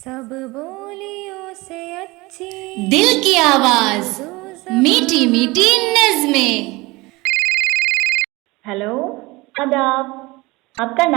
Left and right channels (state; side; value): quieter; left; 22.6 dB